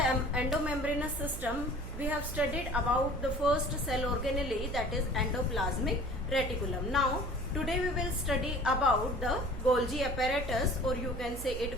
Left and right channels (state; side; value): noise; right; hum, 10 dB below the sound